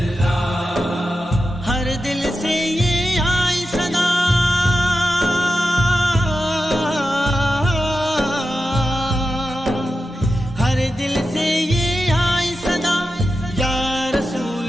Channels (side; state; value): both; normal; correlation 0.91